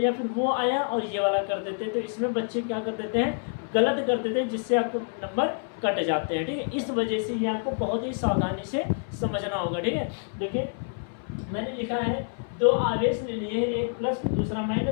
या फिर वो आया और ये वाला कर देते हैं। तो इसमें बच्चे क्या कर देते हैं, गलत कर देते हैं, जिससे आपके नंबर कट जाते हैं, ठीक है। इस वजह से ये आपको बहुत ही सावधानी से समझना होगा, ठीक है। देखिए, मैंने लिखा है दो आवेश ले लिए, एक प्लस दूसरा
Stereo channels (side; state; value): right; silent; 60 dB below the other